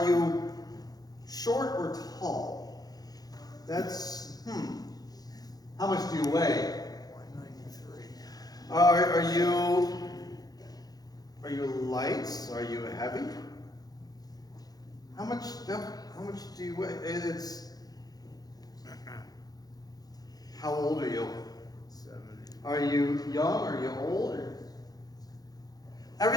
you short or tall? That's, How much do you weigh? 193. Are you light? Are you heavy? How much do you weigh? How old are you? 70. Are you young? Are you old?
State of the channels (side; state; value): right; late; 0.19 ms